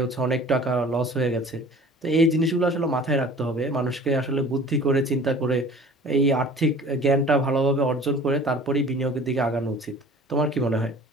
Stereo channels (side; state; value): both; normal; correlation 0.45